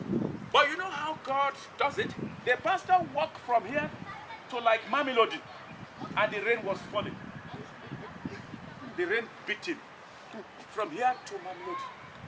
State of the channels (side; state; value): both; identical; correlation 1.00